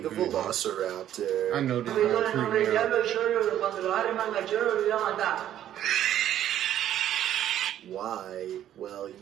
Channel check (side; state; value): left; quieter; 11.4 dB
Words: a velociraptor. I know this is gonna freak me out. Why? Well,